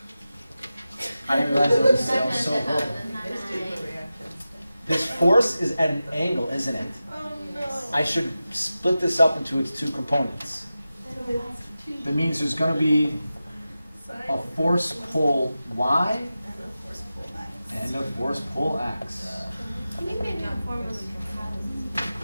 I didn't realize it was so broken. It's doing the reaction. This force is at an angle, isn't it? Oh, no. I should split this up into its two components. That means there's going to be a force pole y and a force pole x. I think my new form was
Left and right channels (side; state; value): both; inverted; correlation -0.94